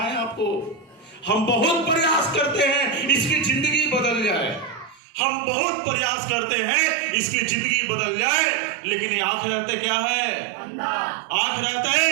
आपको, हम बहुत प्रयास करते हैं इसकी जिंदगी बदल जाए, हम बहुत प्रयास करते हैं इसकी जिंदगी बदल जाए, लेकिन ये आखिरत क्या है? आखिरत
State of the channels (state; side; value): drops out; left; at 5.0 s